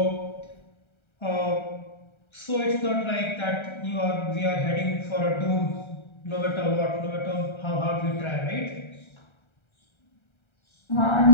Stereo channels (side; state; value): right; late; 1.3 ms